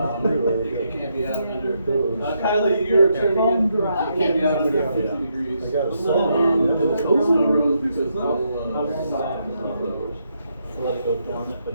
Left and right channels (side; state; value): both; inverted; correlation -0.78